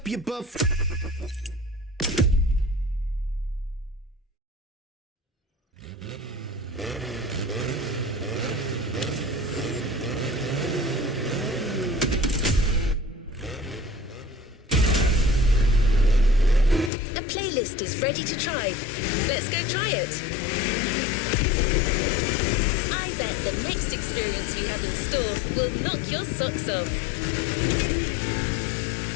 you buff. A playlist is ready to try. Let's go try it. I bet the next experience we have in store will knock your socks off.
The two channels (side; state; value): right; drops out; at 16.9 s